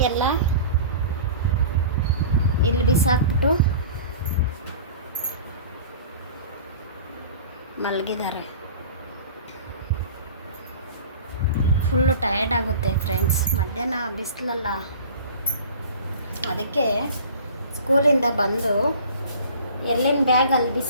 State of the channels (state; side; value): inverted; both; correlation -0.40